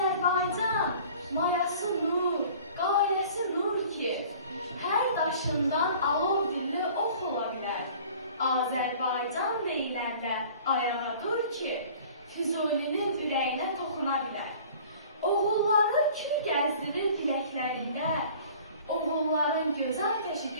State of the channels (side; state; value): both; inverted; correlation -0.47